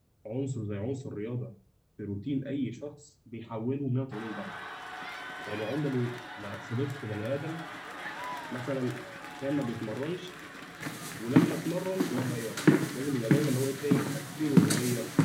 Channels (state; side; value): identical; both; correlation 1.00